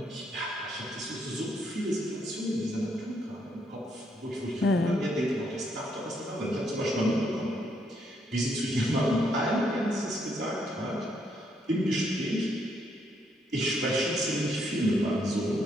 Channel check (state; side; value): normal; both; correlation 0.74